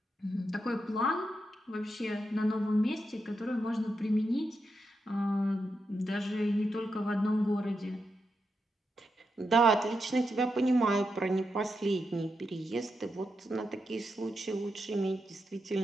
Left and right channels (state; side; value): normal; both; correlation 0.85